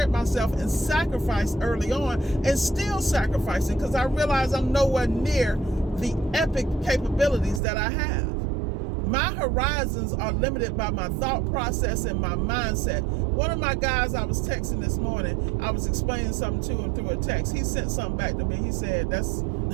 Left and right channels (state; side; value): drops out; left; at 7.6 s